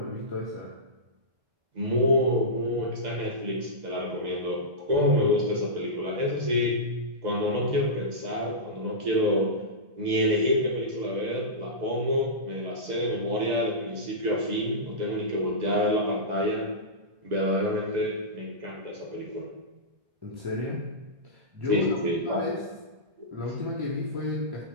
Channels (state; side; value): late; left; 2.0 ms